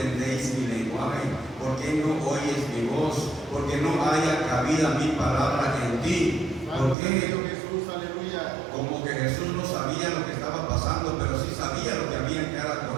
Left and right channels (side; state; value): left; drops out; at 7.0 s